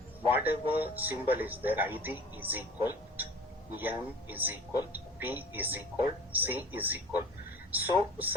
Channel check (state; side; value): normal; both; correlation 0.44